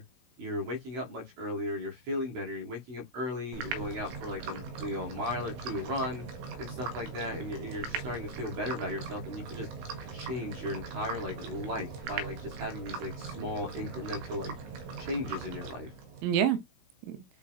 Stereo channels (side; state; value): left; late; 16 ms